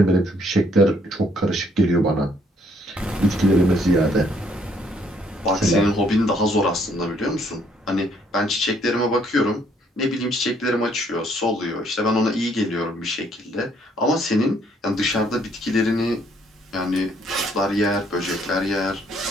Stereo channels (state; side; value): normal; both; correlation 0.67